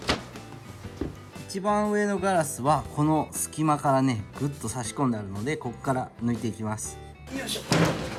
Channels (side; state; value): both; identical; correlation 1.00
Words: 一番上のガラスはこの隙間からねぐっと差し込んであるので、ここから抜いていきます。よいしょ。